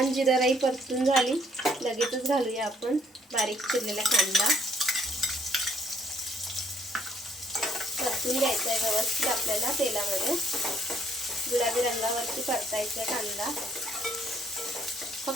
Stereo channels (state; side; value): normal; both; correlation 0.66